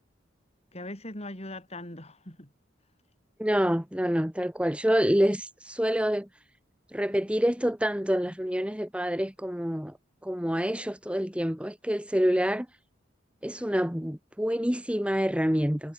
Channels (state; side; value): normal; both; correlation 0.96